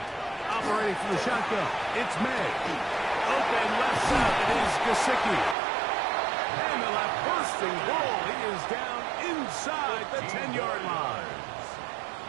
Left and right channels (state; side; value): drops out; left; at 5.6 s